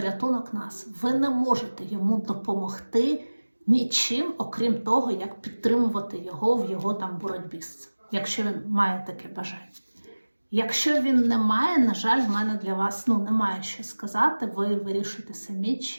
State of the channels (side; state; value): both; inverted; correlation -1.00